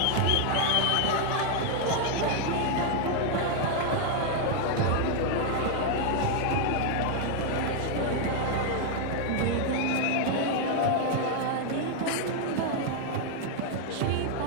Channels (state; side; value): different; both; correlation 0.00